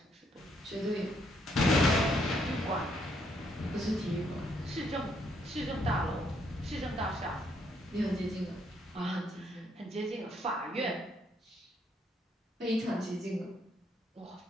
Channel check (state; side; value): normal; both; correlation 0.72